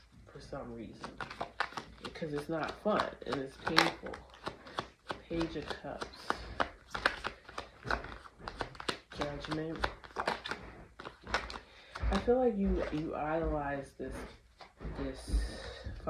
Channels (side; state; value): both; identical; correlation 1.00